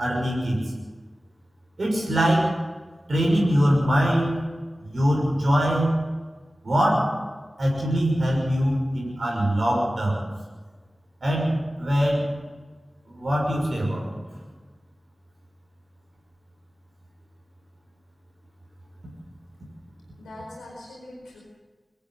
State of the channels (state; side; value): normal; both; correlation 0.94